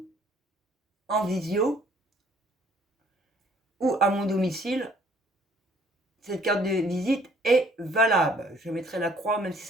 en visio ou à mon domicile. Cette carte de visite est valable. Je mettrai la croix même si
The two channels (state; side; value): normal; both; correlation 0.60